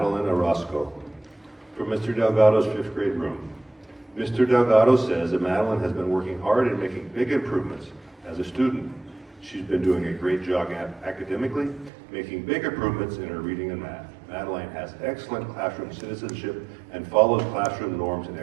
Orozco from Mr. Delgado's 5th grade room. Mr. Delgado says that Madeline has been working hard and making big improvements as a student. She's been doing a great job academically, making big improvements in her reading and math. Madeline has excellent classroom citizenship and follows classroom norms and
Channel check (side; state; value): left; drops out; at 11.9 s